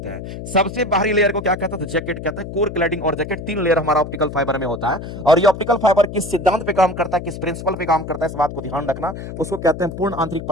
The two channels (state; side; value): noise; left; hum, 9 dB below the sound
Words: हैं। सबसे बाहरी लेयर को क्या कहते हैं, तो जैकेट कहते हैं। कोर, क्लैडिंग और जैकेट 3 लेयर हमारा ऑप्टिकल फाइबर में होता है। और ये ऑप्टिकल फाइबर किस सिद्धांत पे काम करता है, किस प्रिंसिपल पे काम करता है, इस बात को ध्यान रखना। उसको कहते हैं पूर्ण आंतरिक